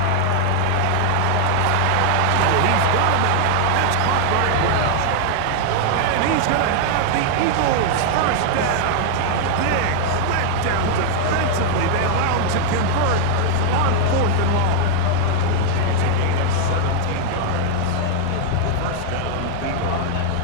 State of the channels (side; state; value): both; different; correlation 0.00